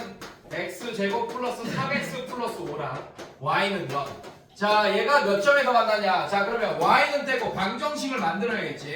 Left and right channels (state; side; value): identical; both; correlation 1.00